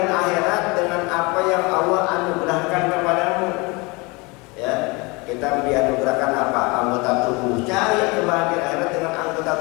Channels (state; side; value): quieter; right; 26.6 dB